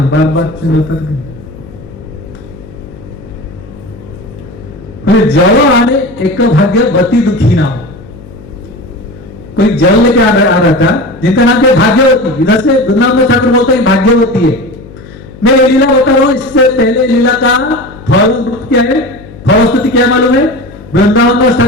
बार बार चेंज होता है। जवाने एक भाग्यवती दुखी नाम, कोई जल लेके आ रहा था जिनका नाम क्या भाग्यवती। इधर से वृंदावन ठाकुर बोलता है भाग्यवती है। मैं ये लीला बता रहा हूं, इससे पहले लीला का फल क्या है, फलस्तुति क्या मालूम है? वृंदावन दास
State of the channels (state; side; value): noise; left; hum, 18 dB below the sound